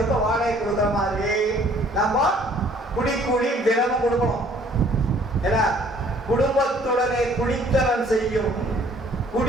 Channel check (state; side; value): normal; both; correlation 0.58